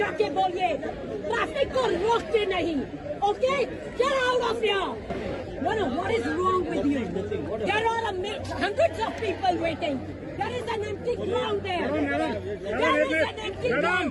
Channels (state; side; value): identical; both; correlation 1.00